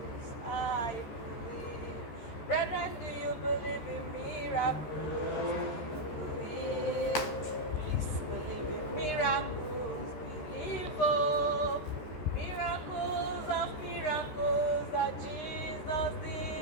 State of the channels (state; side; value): late; right; 13 ms